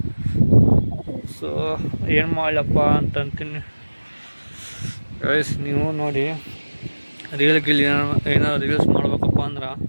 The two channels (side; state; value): both; inverted; correlation -1.00